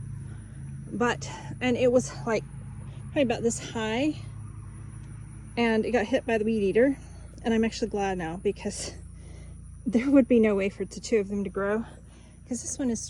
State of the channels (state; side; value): identical; both; correlation 1.00